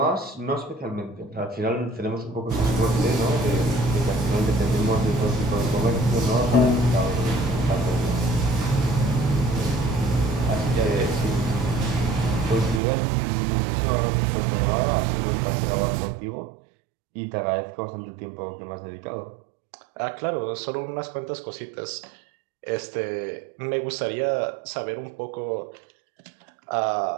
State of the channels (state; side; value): drops out; left; at 12.8 s